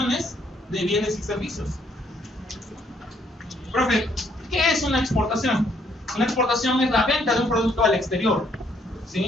de bienes y servicios. Profe, ¿qué es una exportación? Una exportación es la venta de un producto al exterior,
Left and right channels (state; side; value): normal; both; correlation 0.69